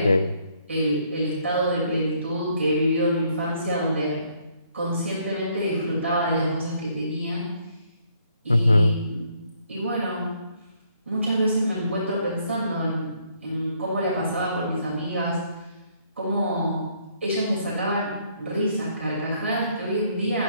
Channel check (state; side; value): inverted; both; correlation -0.68